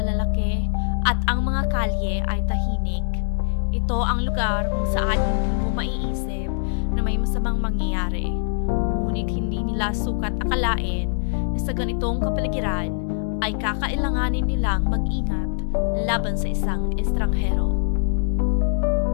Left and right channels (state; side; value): silent; right; digital silence